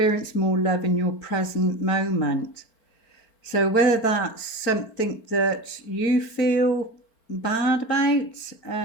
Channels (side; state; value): right; late; 4.4 ms